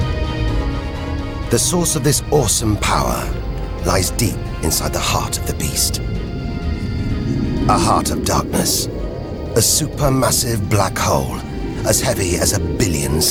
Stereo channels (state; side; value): identical; both; correlation 1.00